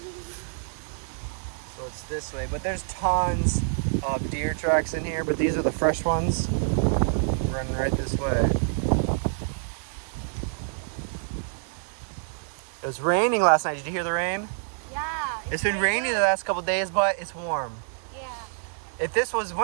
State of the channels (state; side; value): silent; left; digital silence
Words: So it's this way, but there's tons of deer tracks in here, but these are the fresh ones running right this way. It was raining last night. Did you hear the rain? Yeah. It's been rainy the last couple days, but it's warm. Yeah. If this was